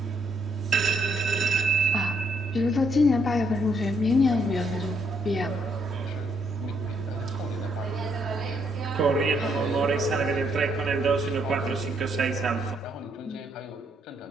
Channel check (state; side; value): normal; both; correlation 0.73